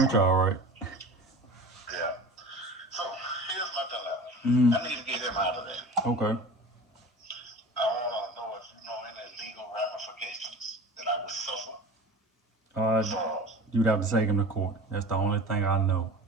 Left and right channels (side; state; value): both; normal; correlation 0.37